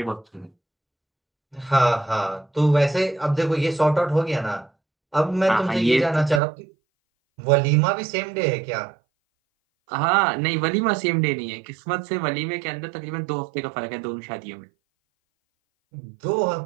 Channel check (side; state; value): left; drops out; at 6.4 s